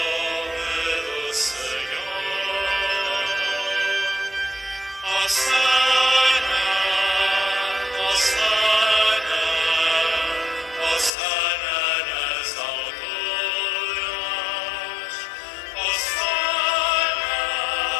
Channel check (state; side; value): drops out; right; at 11.1 s